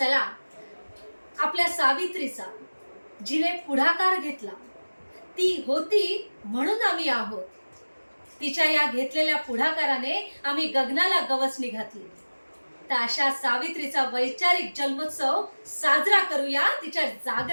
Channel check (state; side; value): inverted; both; correlation -1.00